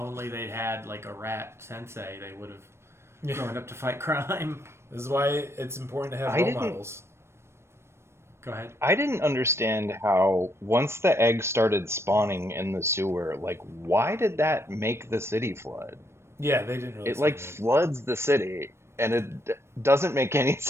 they'd had like a rat sensei, they would have grown up to fight crime. This is why it's important to have role models. Go ahead. I didn't understand how once the egg started spawning in the sewer, why did that make the city flood? Yeah, they didn't really. It floods the city, and it doesn't make any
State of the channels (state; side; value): late; left; 0.13 ms